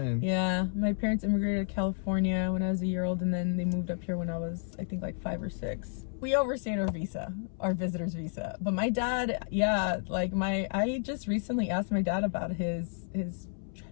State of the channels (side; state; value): right; silent; 57 dB below the other